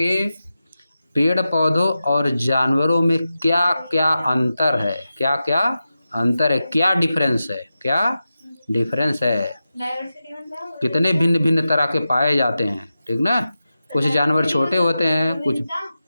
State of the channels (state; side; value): inverted; both; correlation -0.92